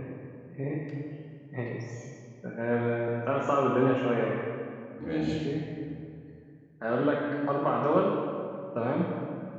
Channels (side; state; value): both; identical; correlation 1.00